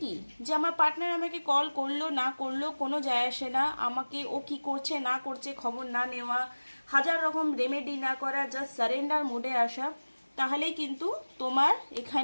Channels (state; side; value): inverted; both; correlation -1.00